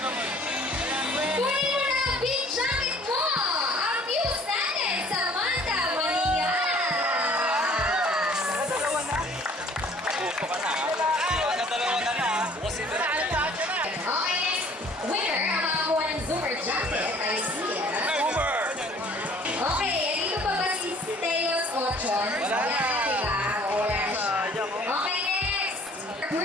Kunin mo na ang big jacket mo! Ang muse natin, Samantha Maria! Dalawa na. Pupo ka na. Dalawa ka na. Bukas ito na. Okay, next winner, ang makakuha ng Zoomer jacket, I see it. Okay, dito pa ba si Teos Ochon? Wala na. Diba? Wala siya. Okay, next,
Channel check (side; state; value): both; normal; correlation 0.54